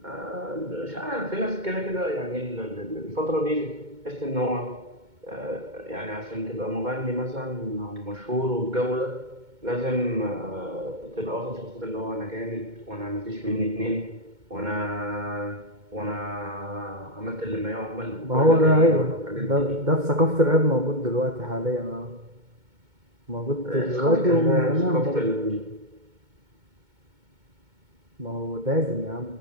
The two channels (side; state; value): left; late; 2.2 ms